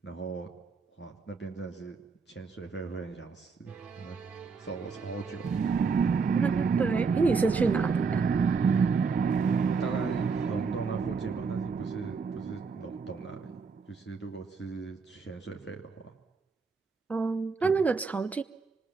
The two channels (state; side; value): quieter; left; 5.0 dB